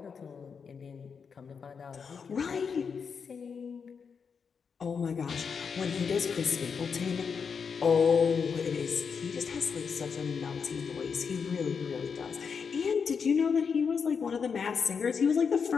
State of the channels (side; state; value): right; quieter; 6.1 dB